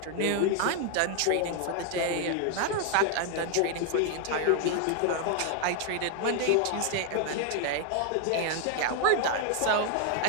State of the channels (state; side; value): different; both; correlation 0.00